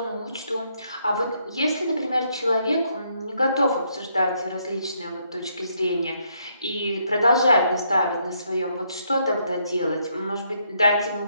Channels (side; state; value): both; inverted; correlation -0.73